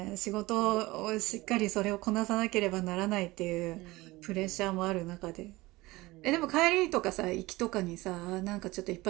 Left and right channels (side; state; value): left; quieter; 20.3 dB